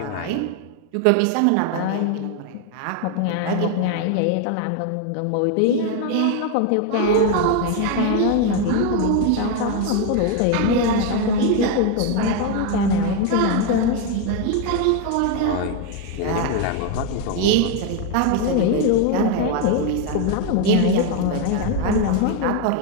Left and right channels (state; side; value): different; both; correlation 0.01